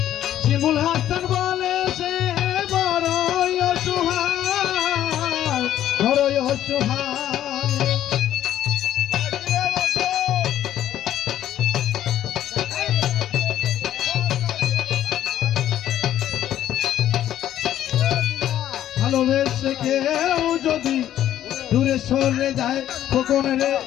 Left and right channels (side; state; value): right; quieter; 11.8 dB